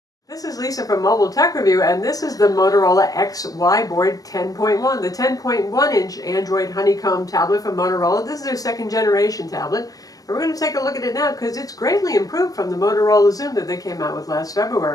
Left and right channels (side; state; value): right; late; 0.18 ms